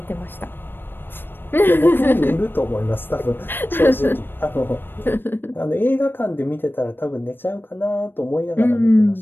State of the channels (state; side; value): late; right; 0.098 ms